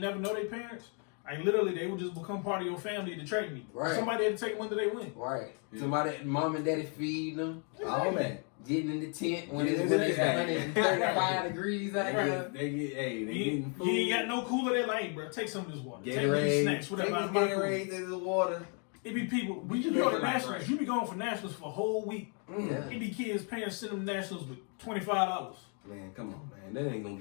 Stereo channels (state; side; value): quieter; right; 39.9 dB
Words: never know their parents. Like literally, they would just become part of your family at the track meet. Right. Somebody had to take them until they win. Right. Yeah. Somebody, mom and daddy feeding them. All that. Getting in the tent when it's 135 degrees out there. They getting food. You ain't got no cooler. They're like, hey, bro, take some of this water. Take these snacks, whatever. Take Gatorade, the water. It be people. We just go to nationals. You be going for nationals for a whole week. Yeah. It be kids, parents send them nationals with $25. Man, come on, man. That ain't gonna